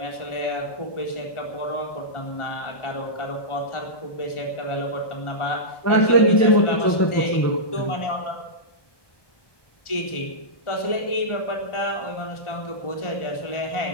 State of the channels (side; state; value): right; late; 1.2 ms